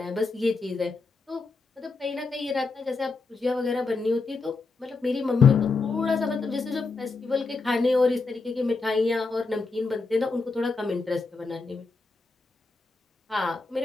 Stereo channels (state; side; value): quieter; right; 4.0 dB